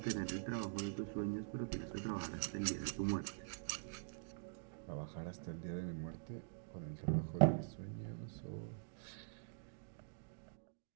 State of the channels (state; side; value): silent; left; digital silence